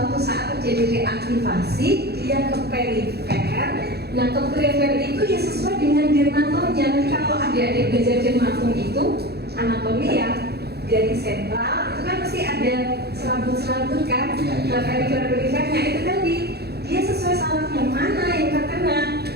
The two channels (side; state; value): left; late; 0.47 ms